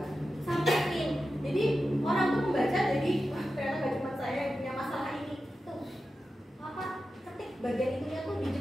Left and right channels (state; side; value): normal; both; correlation 0.92